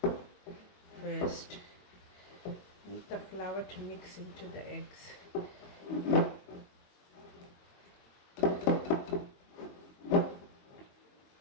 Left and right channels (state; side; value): late; right; 21 ms